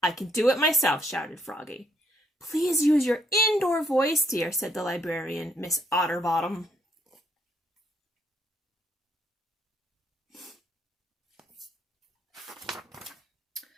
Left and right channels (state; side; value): normal; both; correlation 0.70